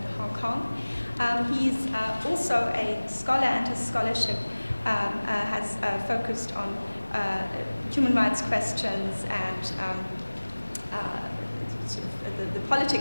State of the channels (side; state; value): both; inverted; correlation -1.00